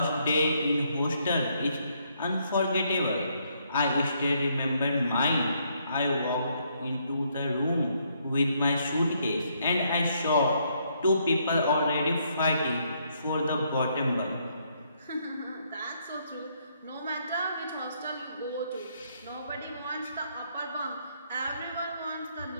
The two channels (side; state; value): both; inverted; correlation -0.72